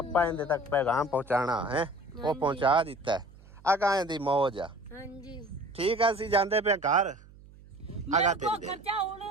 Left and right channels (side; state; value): right; noise; hum, 22 dB below the sound